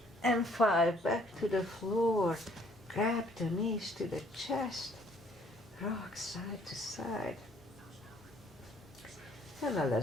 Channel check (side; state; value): both; normal; correlation 0.61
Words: and 5. Back to the floor. Grab the knees to the chest. Rock side to side. And now